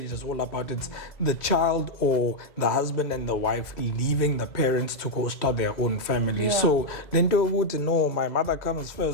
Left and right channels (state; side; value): late; right; 2.0 ms